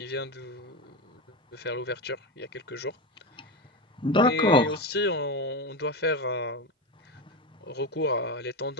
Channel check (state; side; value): normal; both; correlation 0.17